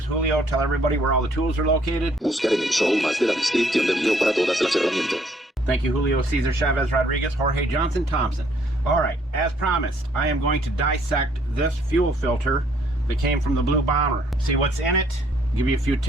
Julio, tell everybody where all the tools are located. Buscar en el show más de la descripción del video para todas las herramientas. Thank you, Julio Cesar Chavez Rodriguez, Jorge Johnson Thompson. Alright, as promised, I am going to dissect this fuel filter that came from the Blue Bomber. See what's in it, give you a few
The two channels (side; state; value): both; normal; correlation 0.65